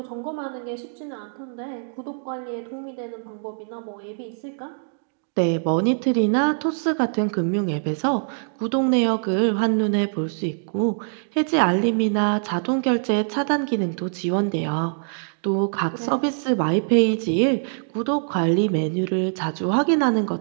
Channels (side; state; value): left; silent; digital silence